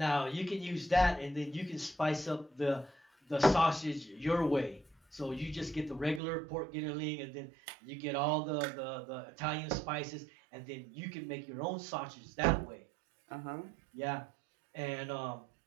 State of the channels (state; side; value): drops out; left; at 6.2 s